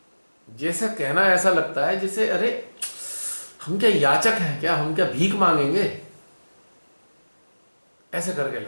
जैसे कहना ऐसा लगता है जैसे अरे हम क्या याचक हैं क्या, हम क्या भीख मांगेंगे, ऐसे करके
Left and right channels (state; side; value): inverted; both; correlation -1.00